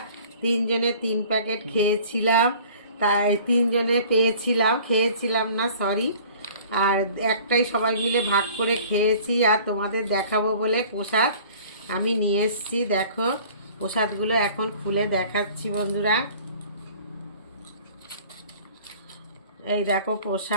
তিনজনে 3 প্যাকেট খেয়েছিলাম, তাই তিনজনে খেয়েছিলাম না, সরি। আর একটাই সবাই মিলে ভাগ করে খেয়েছি। আর তোমাদের দেখাবো বলে প্রসাদ আমি নিয়ে এসছি, দেখো প্রসাদগুলো এখন খুলে দেখাচ্ছি বন্ধুরা। এই দেখো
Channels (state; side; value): inverted; both; correlation -0.49